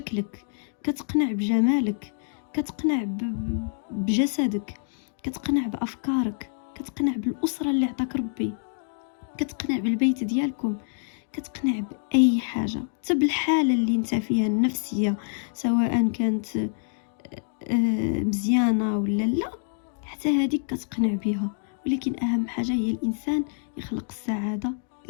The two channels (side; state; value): right; silent; digital silence